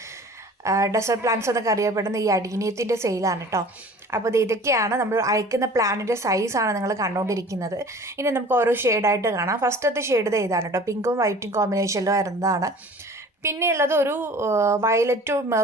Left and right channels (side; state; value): both; normal; correlation 0.45